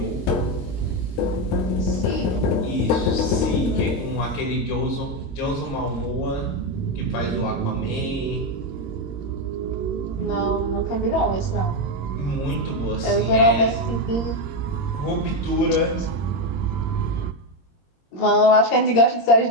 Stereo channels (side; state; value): right; late; 22 ms